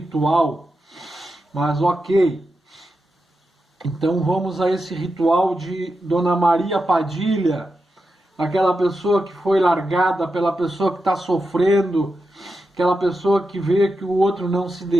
Mas ok, então vamos a esse ritual de Dona Maria Padilha, aquela pessoa que foi largada, pela pessoa que está sofrendo, aquela pessoa que vê que o outro não se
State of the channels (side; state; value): both; normal; correlation 0.88